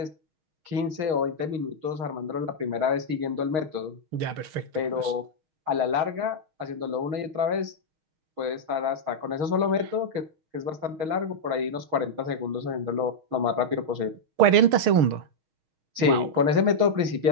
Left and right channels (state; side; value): late; left; 6.4 ms